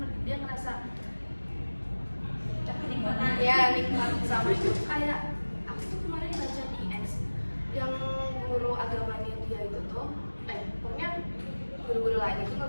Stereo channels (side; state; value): both; inverted; correlation -1.00